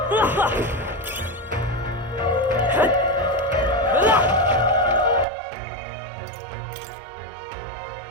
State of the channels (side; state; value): left; drops out; at 5.2 s